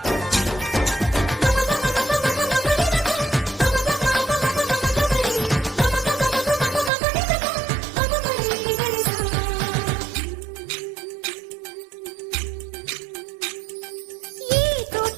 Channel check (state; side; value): drops out; left; at 6.9 s